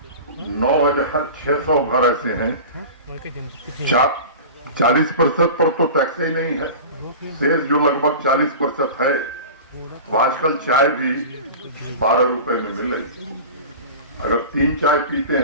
घर ऐसे हैं, 40% पर तो टैक्स ही नहीं है। शेष जो लगभग 40% है, तो आजकल चाय भी 12 रुपए में मिल रही। अगर 3 चाय पीते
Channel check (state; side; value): inverted; both; correlation -0.34